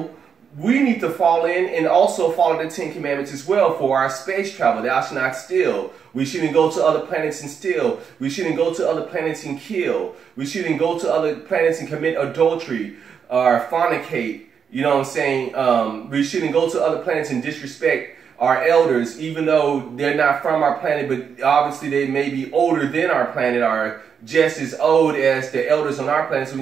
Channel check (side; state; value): left; quieter; 7.0 dB